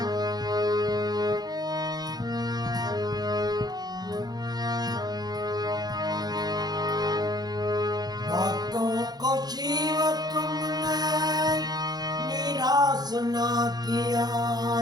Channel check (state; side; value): late; left; 0.19 ms